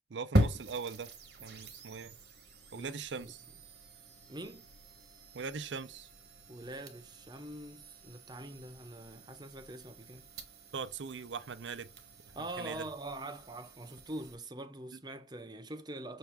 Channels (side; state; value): both; normal; correlation 0.60